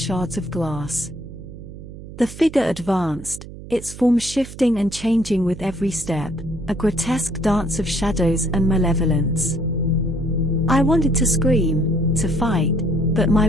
of glass. The figure advanced, its form shifting and changing with every step, a grotesque dance of shadows and malevolence. I wanted to scream, to fight, but my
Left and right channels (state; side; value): noise; right; hum, 14 dB below the sound